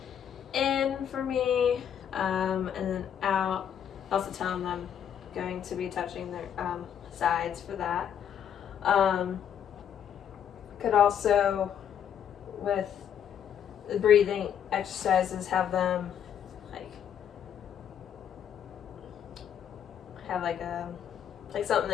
in for me, and then out. Also tell them I'm going to be touching their sides for that. Could also, with the breathing exercises, have them have like something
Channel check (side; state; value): right; quieter; 8.9 dB